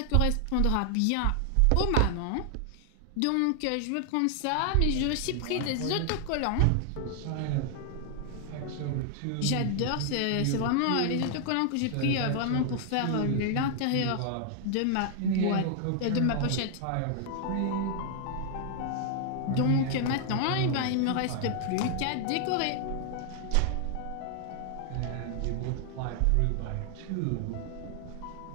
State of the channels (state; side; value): different; both; correlation 0.00